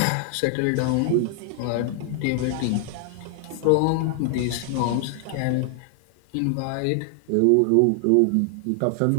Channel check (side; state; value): both; different; correlation 0.00